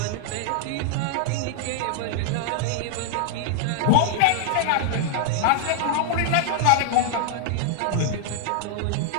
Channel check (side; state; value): both; different; correlation 0.00